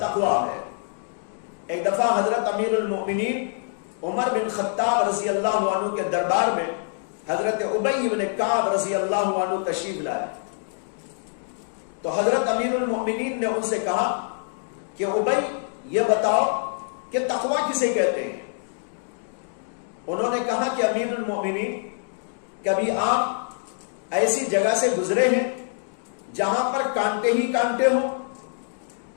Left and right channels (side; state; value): right; silent; digital silence